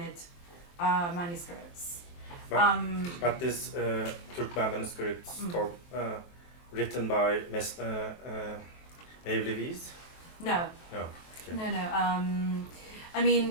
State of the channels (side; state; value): right; late; 23 ms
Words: manuscripts. But this Turkmen manuscripts written by Mevlevis? No. No. Okay. No. I mean,